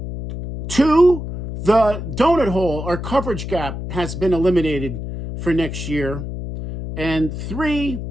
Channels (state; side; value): noise; left; hum, 7 dB below the sound